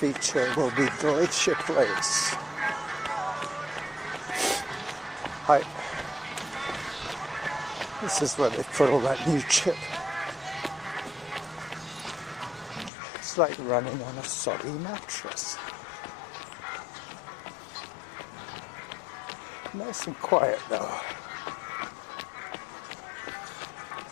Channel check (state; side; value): drops out; right; at 12.9 s